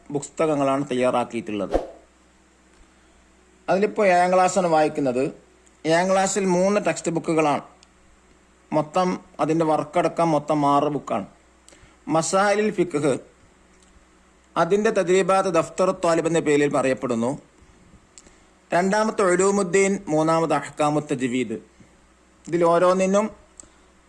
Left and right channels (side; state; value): both; identical; correlation 1.00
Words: പുസ്തകങ്ങളാണ് തയ്യാറാക്കിയിട്ടുള്ളത്. അതിലിപ്പോൾ 7-ാം ക്ലാസ്സാണ് വായിക്കുന്നത്. 7-ാം ക്ലാസ്സിൽ 3 ടെക്സ്റ്റ് ബുക്കുകളാണ്. മൊത്തം അതിൻ്റെ വർക്കടക്കം മൊത്തം 6 ബുക്കാണ്. മസായിലുൽ ഫിഖ് അതിൻ്റെ തദ്രീബാത്ത് ദഫ്തർ ത്വാലിബ് എന്ന പേരിൽ പറയപ്പെടുന്നു. 2-ാമത്തെ ഉലൂമുദ്ദീൻ, 3-ാമത് അഹ്കാമുത്ത് തജ്വീദ്. ഇതിൽ ഓരോന്നിനും